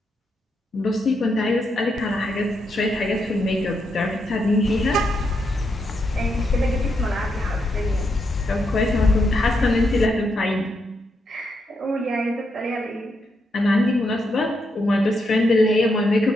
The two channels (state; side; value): normal; both; correlation 0.81